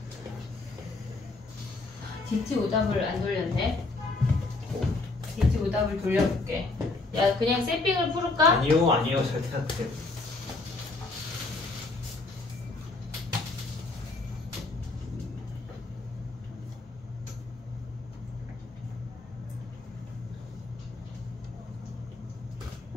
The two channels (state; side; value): quieter; right; 3.4 dB